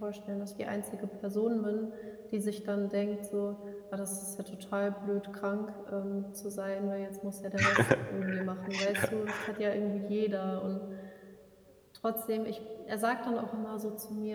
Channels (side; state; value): both; identical; correlation 1.00